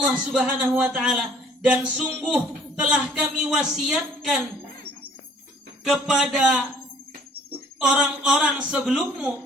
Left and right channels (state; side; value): normal; both; correlation 0.56